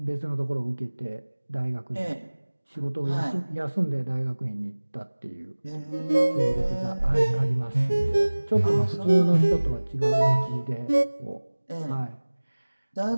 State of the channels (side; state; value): both; inverted; correlation -1.00